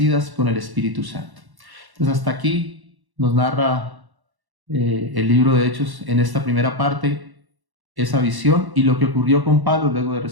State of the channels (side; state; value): left; late; 1.1 ms